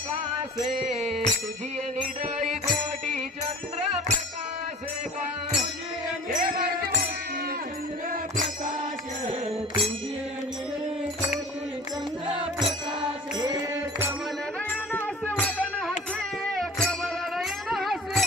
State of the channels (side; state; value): both; normal; correlation 0.42